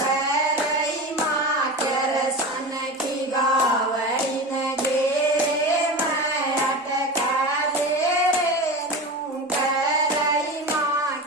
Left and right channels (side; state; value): both; normal; correlation 0.27